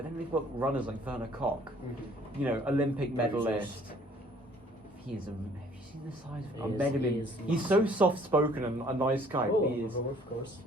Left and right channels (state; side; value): normal; both; correlation 0.58